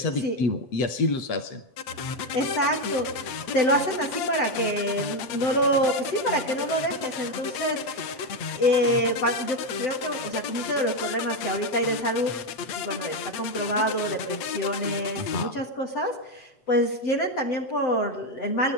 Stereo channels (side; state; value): right; late; 7.9 ms